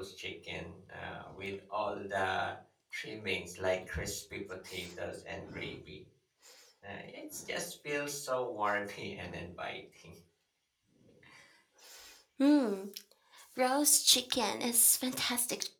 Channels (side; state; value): both; identical; correlation 1.00